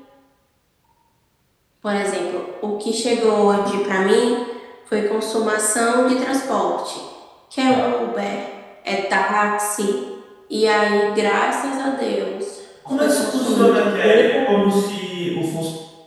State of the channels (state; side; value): identical; both; correlation 1.00